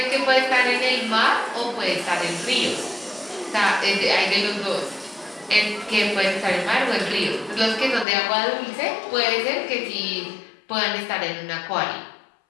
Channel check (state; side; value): drops out; right; at 8.1 s